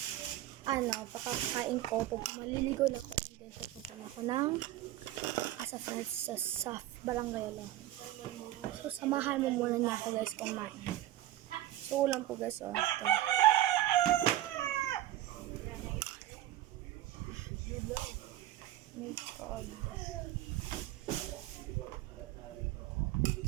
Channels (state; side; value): quieter; left; 14.4 dB